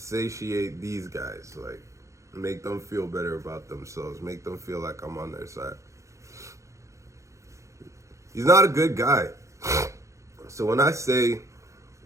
these guys, like make them feel better about themselves, make them feel like I'm on their side. He's not a good guy. So when I say,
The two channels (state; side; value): late; left; 0.15 ms